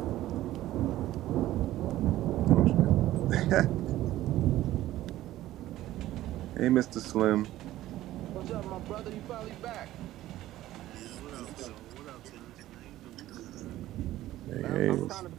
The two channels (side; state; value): left; quieter; 14.9 dB